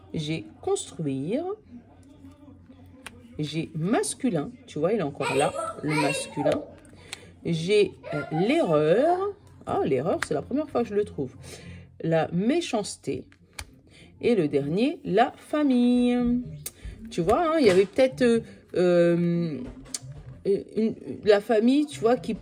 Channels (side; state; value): both; identical; correlation 1.00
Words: J'ai construire. j'ai masculin, tu vois, il est encore là, le masculin. J'ai l'erreur, ah l'erreur c'est la première fois que je le trouve, la méchanceté. Et le dernier, la famille. Tu vois, hein, il y avait peut-être la famille, tu vois, qui